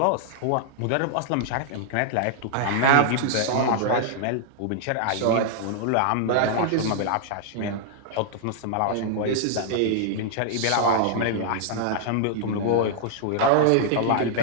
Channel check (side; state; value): both; different; correlation -0.01